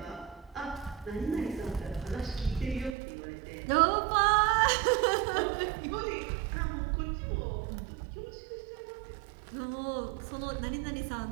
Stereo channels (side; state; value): left; drops out; at 3.0 s